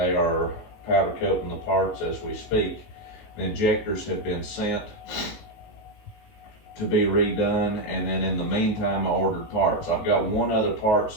are powder coating the parts as we speak. The injectors have been sent to be redone, and then in the meantime I ordered parts. I've got one other part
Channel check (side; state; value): right; late; 19 ms